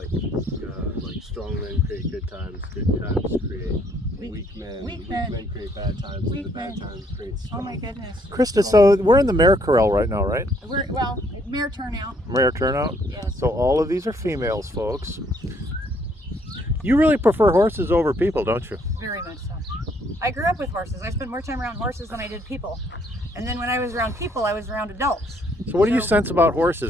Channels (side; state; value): both; normal; correlation 0.67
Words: strong men create good times create weak men create bad times, and the bad times create strong. Oh my goodness. Krista, so we're in the mare corral right now, right? Well, mare turnout. Mare turnout? Yes. So all of these are females, folks. You really prefer horses over people, don't you? Very much so. I grew up with horses. I spent more time around horses than I did people. And then when I was around people, I was around adults. So what do you sense about